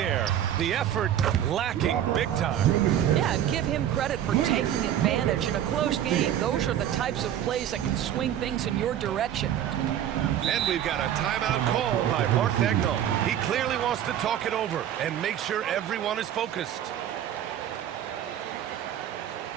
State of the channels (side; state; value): left; quieter; 10.7 dB